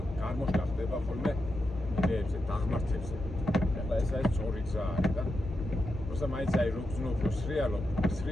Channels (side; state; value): both; normal; correlation 0.87